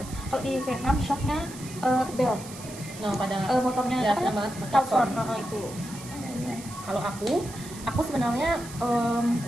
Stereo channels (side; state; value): right; noise; hiss, 15 dB below the sound